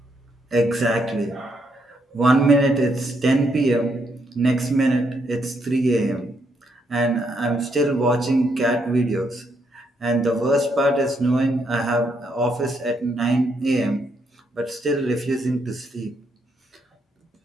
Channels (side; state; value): both; normal; correlation 0.76